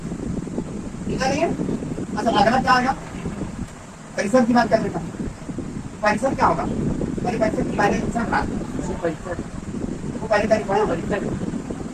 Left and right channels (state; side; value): identical; both; correlation 1.00